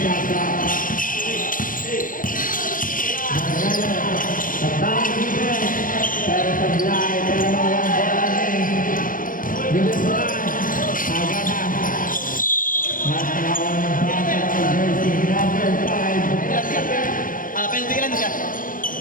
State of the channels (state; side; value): late; right; 0.40 ms